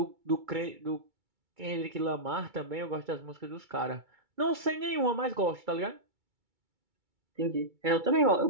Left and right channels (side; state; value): left; late; 2.3 ms